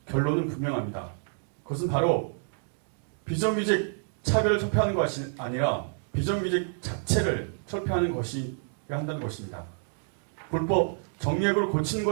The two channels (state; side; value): silent; left; digital silence